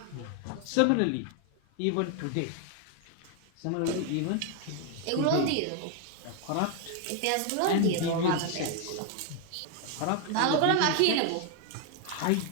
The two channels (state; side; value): different; both; correlation 0.01